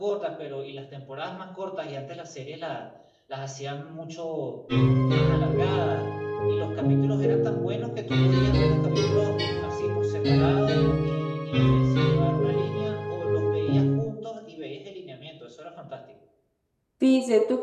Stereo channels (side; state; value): both; identical; correlation 1.00